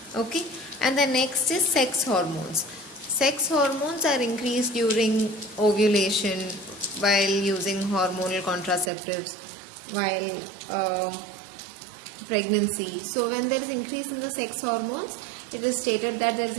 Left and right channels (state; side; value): drops out; left; at 8.9 s